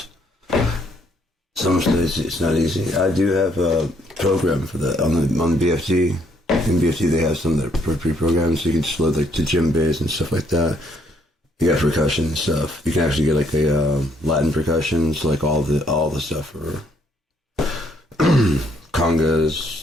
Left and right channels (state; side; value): normal; both; correlation 0.68